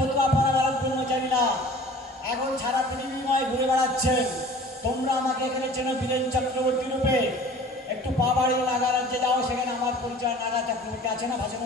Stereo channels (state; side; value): normal; both; correlation 0.46